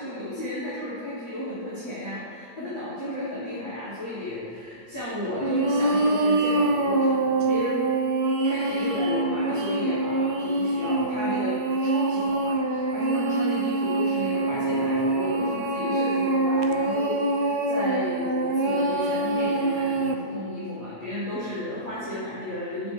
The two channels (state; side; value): late; right; 8.5 ms